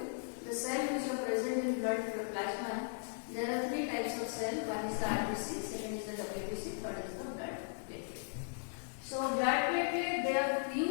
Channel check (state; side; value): silent; right; digital silence